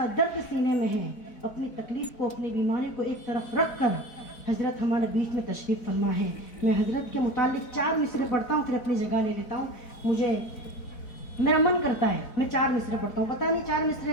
दर्द सीने में है, अपनी तकलीफ़ को, अपनी बीमारी को एक तरफ रख कर हज़रत हमारे बीच में तशरीफ़ फरमा है। मैं हज़रत के मुतालिक 4 मिसरे पढ़ता हूँ, फिर अपनी जगह ले लेता हूँ। मुझे मेरा मन करता है मैं 4 मिसरे पढ़ता हूँ, पता नहीं 4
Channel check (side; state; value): right; late; 4.4 ms